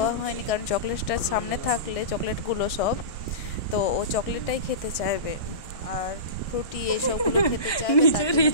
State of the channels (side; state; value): right; late; 1.6 ms